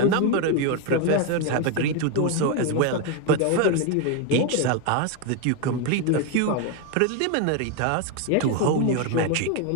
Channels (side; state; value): both; different; correlation 0.02